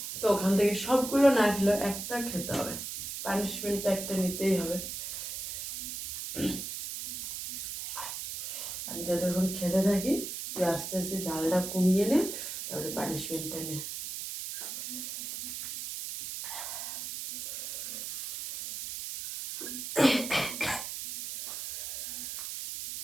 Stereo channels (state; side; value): noise; right; hiss, 6 dB below the sound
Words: তো ওখান থেকে সবগুলো না খেলে একটা খেতে হবে, পানিশমেন্টটা একটা নিতেই হবে। আমি তো তখন খেতে থাকি, তুই আস্তে আস্তে ঝালটা কমিয়ে নে, তারপরে পানিশমেন্টটা নে।